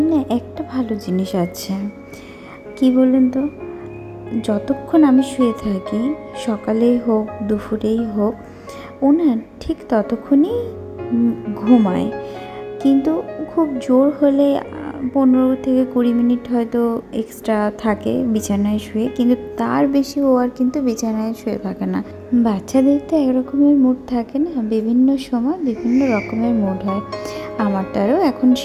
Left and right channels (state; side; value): identical; both; correlation 1.00